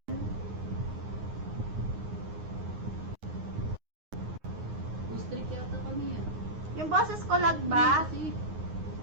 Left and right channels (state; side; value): late; left; 9.6 ms